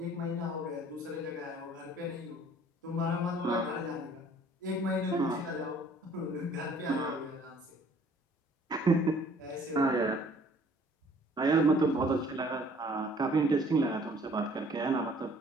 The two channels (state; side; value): normal; both; correlation 0.56